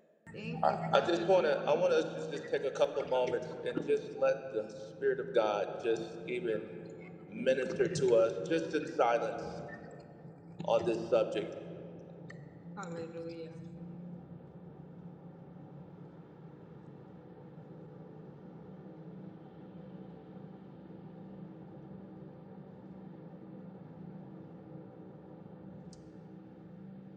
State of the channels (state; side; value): identical; both; correlation 1.00